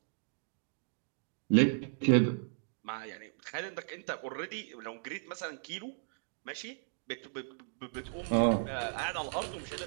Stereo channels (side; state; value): left; silent; digital silence